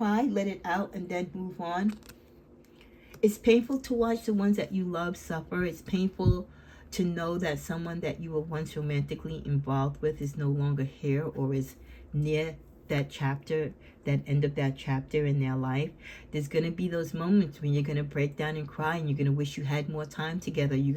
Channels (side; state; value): both; identical; correlation 1.00